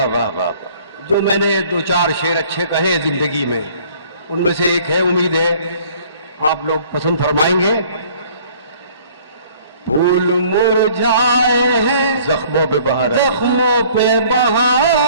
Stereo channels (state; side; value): inverted; both; correlation -0.54